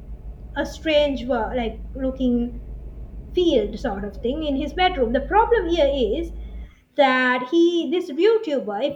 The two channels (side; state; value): both; identical; correlation 1.00